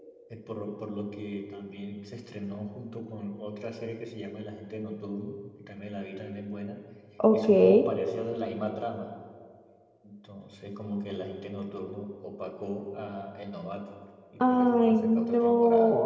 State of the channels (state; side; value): identical; both; correlation 1.00